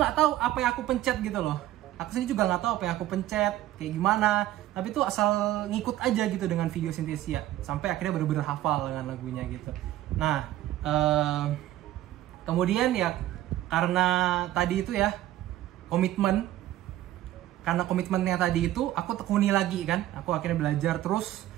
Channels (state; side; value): quieter; left; 14.2 dB